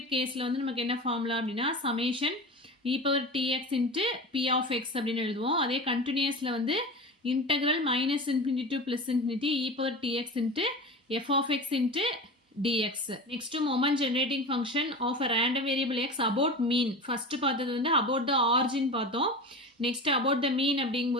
கேஸில் வந்து நமக்கு என்ன ஃபார்முலா அப்படின்னா summation e power tx into p of x அப்படின்னு எழுதுவோம். அதே கண்டினியூஸில் வந்து integral minus infinity to plus infinity e power tx into f of x into dx. Next moment generating function of a random variable x about mean. First பார்த்தது வந்து about the origin பார்த்தோம். Next about the mean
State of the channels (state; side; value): normal; both; correlation 0.30